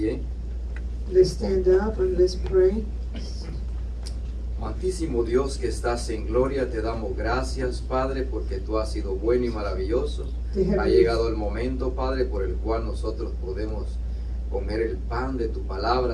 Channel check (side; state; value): both; identical; correlation 1.00